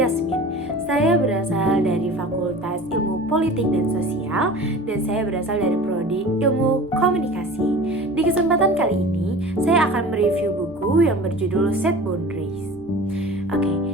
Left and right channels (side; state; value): both; normal; correlation 0.39